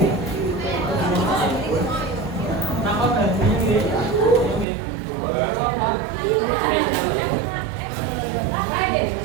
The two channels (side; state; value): left; drops out; at 4.7 s